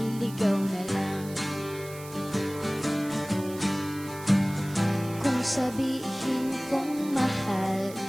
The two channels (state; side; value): noise; right; hiss, 17 dB below the sound